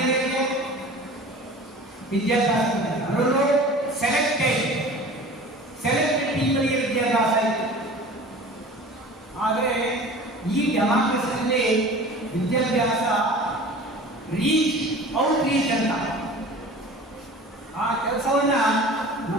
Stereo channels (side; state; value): both; normal; correlation 0.41